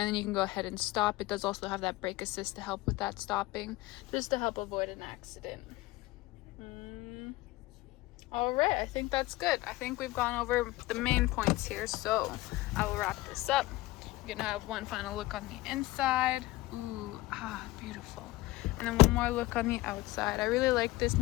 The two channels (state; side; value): quieter; right; 19.0 dB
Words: then you can go ahead and stop. It does also have that brake assist to help with that stopping, just to help avoid an accident. All right, I think that's good. I think we've gone over the main points here, so I will wrap this up. You're gonna have one final look on the inside. Ooh, beautiful. And then one more look on the outside. I really like this